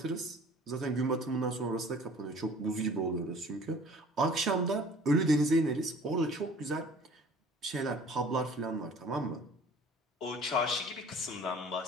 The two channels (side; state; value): both; normal; correlation 0.49